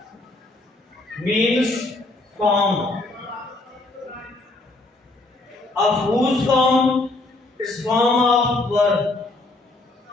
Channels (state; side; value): quieter; right; 3.0 dB